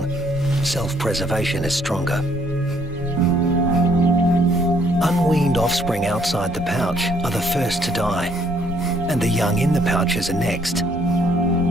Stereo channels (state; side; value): noise; right; hum, 20 dB below the sound